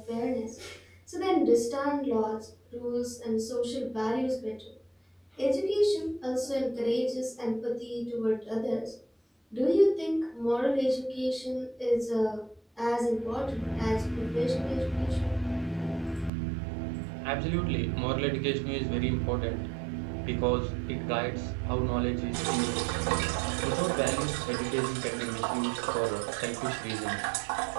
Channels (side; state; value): left; drops out; at 16.3 s